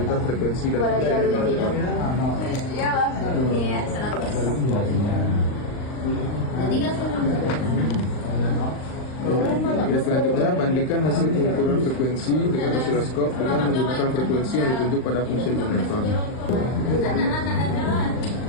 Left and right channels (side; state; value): right; late; 39 ms